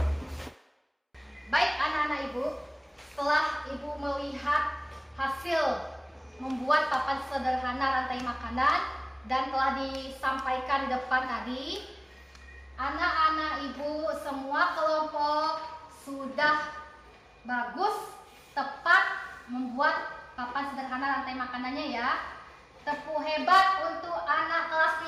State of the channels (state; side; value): identical; both; correlation 1.00